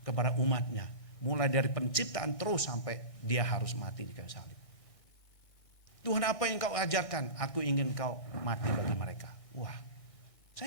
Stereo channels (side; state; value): right; late; 1.6 ms